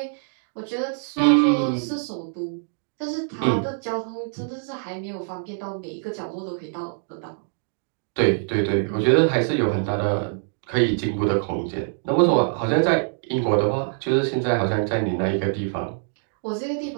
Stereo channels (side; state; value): left; silent; digital silence